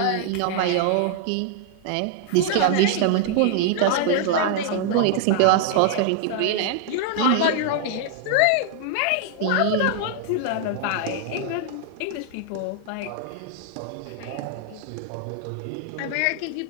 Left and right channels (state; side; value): different; both; correlation 0.00